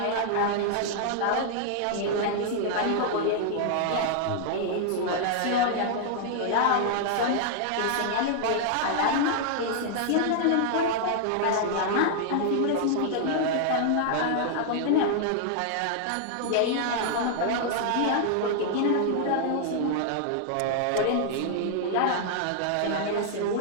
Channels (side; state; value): both; different; correlation -0.01